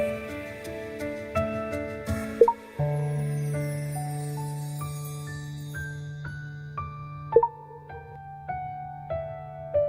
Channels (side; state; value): both; identical; correlation 1.00